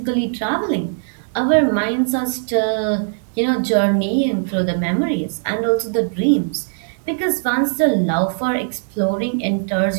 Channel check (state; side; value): silent; left; digital silence